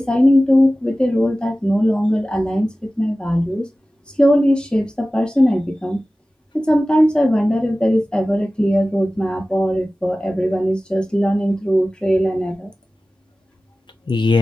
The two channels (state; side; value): normal; both; correlation 0.96